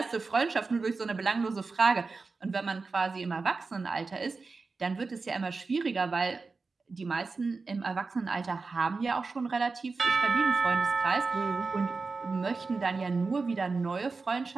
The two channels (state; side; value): quieter; left; 4.2 dB